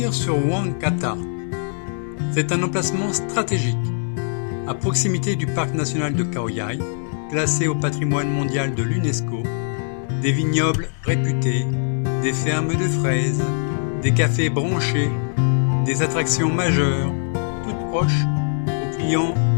sur Wang Kata? C'est un emplacement stratégique, à proximité du parc national de Khao Yai, classé au patrimoine mondial de l'UNESCO, des vignobles réputés, des fermes de fraises, des cafés branchés, des attractions majeures, toutes proches, où clients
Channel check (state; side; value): silent; right; digital silence